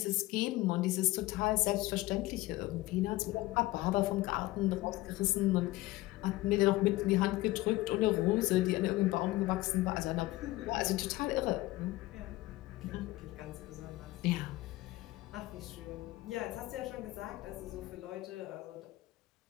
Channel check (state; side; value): quieter; right; 18.8 dB